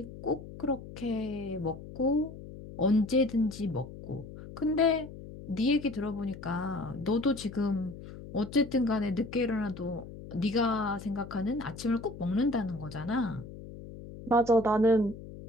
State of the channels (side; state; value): left; noise; hum, 14 dB below the sound